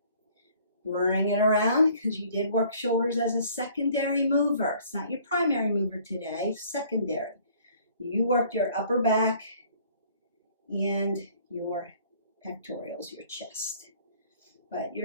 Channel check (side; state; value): both; inverted; correlation -0.57